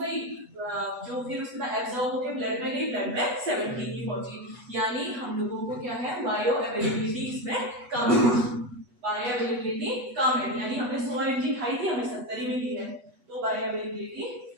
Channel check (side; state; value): left; late; 8.1 ms